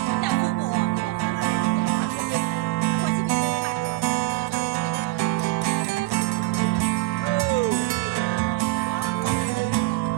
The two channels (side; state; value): left; quieter; 20.1 dB